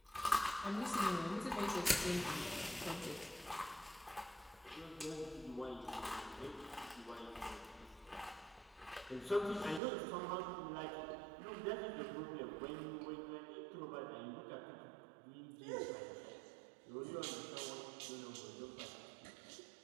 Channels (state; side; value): drops out; left; at 9.8 s